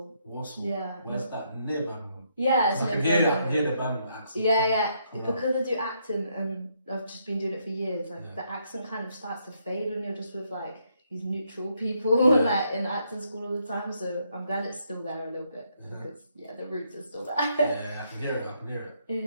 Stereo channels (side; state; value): both; inverted; correlation -0.74